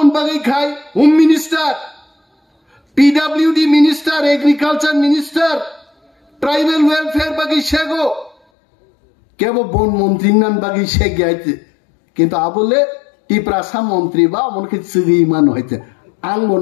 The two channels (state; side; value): drops out; right; at 8.3 s